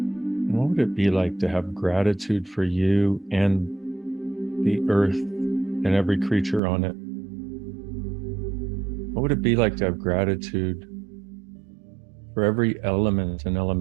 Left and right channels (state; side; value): drops out; left; at 6.6 s